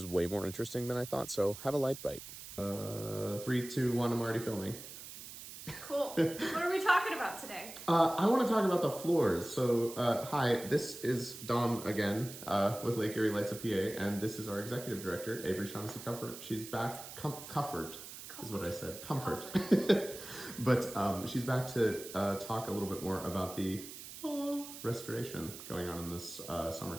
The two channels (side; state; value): right; noise; hiss, 12 dB below the sound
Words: way more interesting than I thought, so have a light bite. 3, 2, 1, I'm already filming. Cool. What are we talking about today? I want to talk about the floors. So, hi, this is Dom again with Lake Erie Lights of PA, and this is our executive director, Averie Teaches Dom. She's back. Comfort is what I said. Comfort. But she's back to talk a little bit more about the restoration going on in this summer